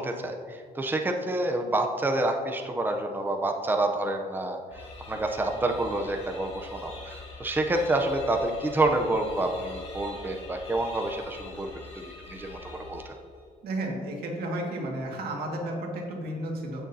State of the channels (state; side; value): normal; both; correlation 0.66